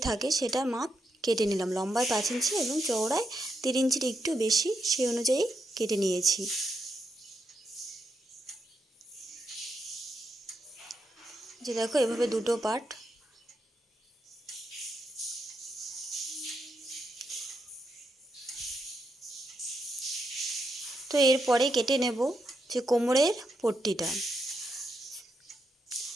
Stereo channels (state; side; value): normal; both; correlation 0.81